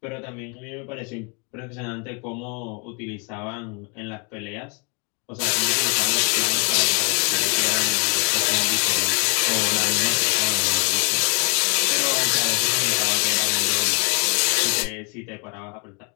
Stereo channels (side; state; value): right; quieter; 35.0 dB